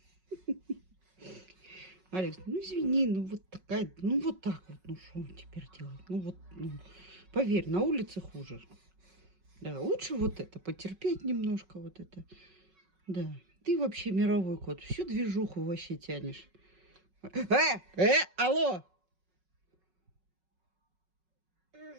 Алекс, ну извини, ну вот такая, ну вот так вот, ну что теперь делать? Ну вот, ну, поверь, на улице хуже. Да, лучше вот это, потерпеть немножко вот это. Да, ты вообще мировой кот, всю движуху вообще тянешь. Алло!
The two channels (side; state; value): left; late; 5.4 ms